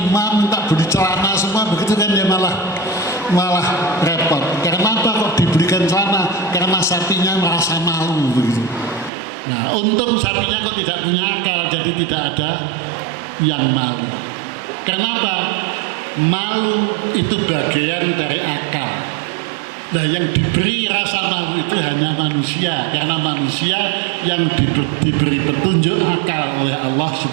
minta beli celana semua begitu kan, dia malah repot. Karena apa kok dibelikan celana? Karena sapinya merasa malu begitu. Nah, untung sapinya kok tidak punya akal, jadi tidak ada yang malu. Kenapa? Malu itu bagian dari akal. Nah, yang diberi rasa malu itu hanya manusia, karena manusia yang diberi petunjuk akal oleh Allah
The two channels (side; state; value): left; drops out; at 9.1 s